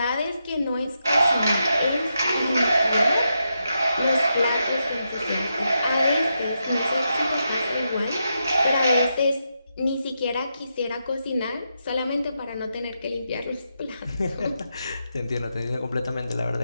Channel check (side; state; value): both; inverted; correlation -0.84